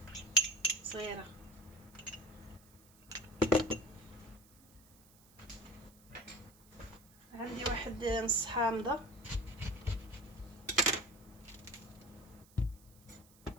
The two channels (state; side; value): noise; right; hiss, 26 dB below the sound